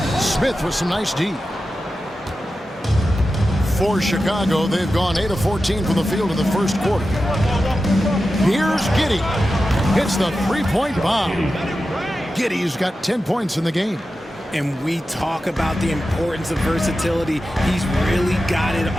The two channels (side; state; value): both; normal; correlation 0.92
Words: Smith with some nice D. For Chicago, they've gone 8 of 14 from the field in the first quarter. Here's Giddey. Hits the 3-point bomb. Giddey's got 10 points in the game. And we talk about the importance of versatility. He's really got it